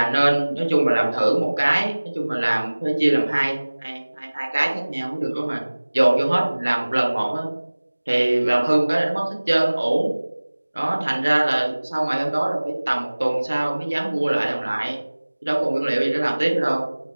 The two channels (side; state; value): both; inverted; correlation -1.00